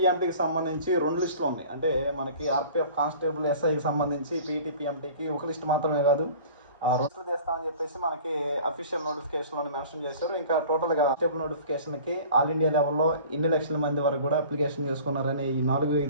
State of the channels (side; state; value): both; inverted; correlation -0.44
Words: సంబంధించి 2 లిస్టులు ఉన్నాయి. అంటే మనకి ఆర్పిఎఫ్ కానిస్టేబుల్ ఎస్ఐకి సంబంధించి పీఈటీ పిఎంటీకి ఒక లిస్ట్ మాత్రమే కాదు, 2 లిస్టులు చేస్తామని చెప్పేసి మనకి అఫీషియల్ నోటిఫికేషన్లో మెన్షన్ చేశారు. ఇంకా టోటల్గా కానిస్టేబుల్ నోటిఫికేషన్కి ఆల్ ఇండియా లెవెల్లో ఎన్ని లక్షల మంది వరకు కూడా అప్లికేషన్ చేసుకున్నారనే ఈ